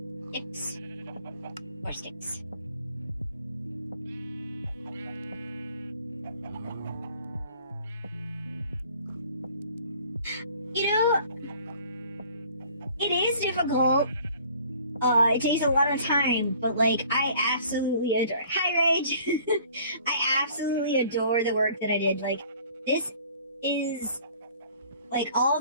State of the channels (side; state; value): both; inverted; correlation -0.53